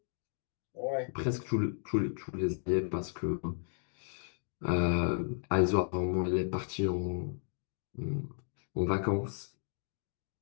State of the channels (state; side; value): silent; right; digital silence